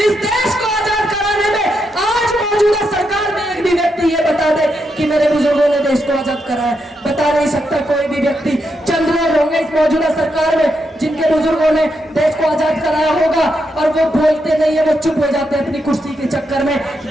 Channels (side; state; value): both; normal; correlation 0.82